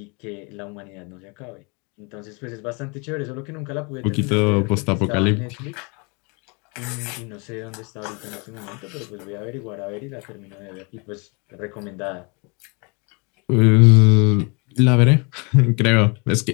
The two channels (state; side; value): quieter; right; 32.1 dB